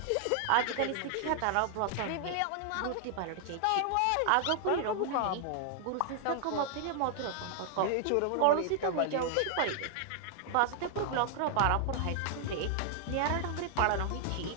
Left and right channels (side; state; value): both; different; correlation 0.00